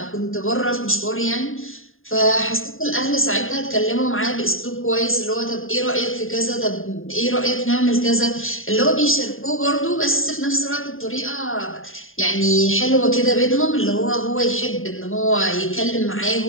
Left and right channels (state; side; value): late; right; 0.59 ms